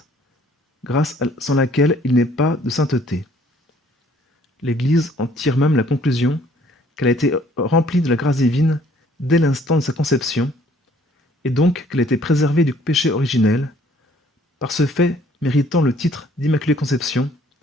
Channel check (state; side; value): normal; both; correlation 0.60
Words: grâce sans laquelle il n'est pas de sainteté. L'Église en tire même la conclusion qu'elle a été remplie de la grâce divine dès l'instant de sa conception, et donc qu'elle a été préservée du péché originel, par ce fait méritant le titre d'Immaculée Conception,